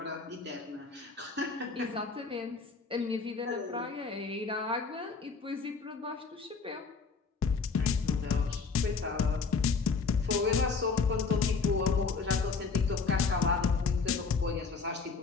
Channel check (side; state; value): right; quieter; 4.8 dB